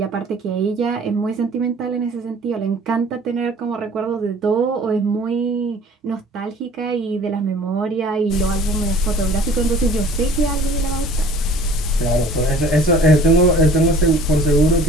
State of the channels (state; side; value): normal; both; correlation 0.49